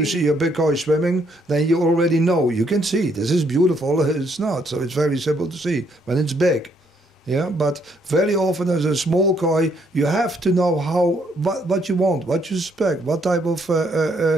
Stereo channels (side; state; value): both; normal; correlation 0.70